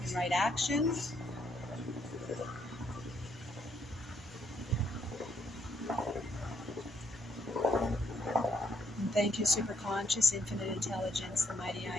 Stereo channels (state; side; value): normal; both; correlation 0.72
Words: and right action. And thank you, superconscious, infinite intelligence, the mighty I